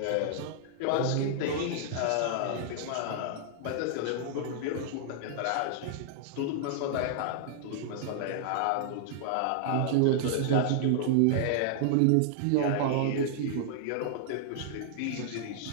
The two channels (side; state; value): both; different; correlation -0.01